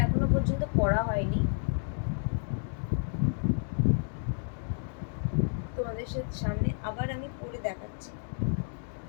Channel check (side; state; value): right; silent; digital silence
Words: এখনো পর্যন্ত পড়া হয়নি, তোমাদের সামনে আবার আমি পরে দেখাচ্ছি।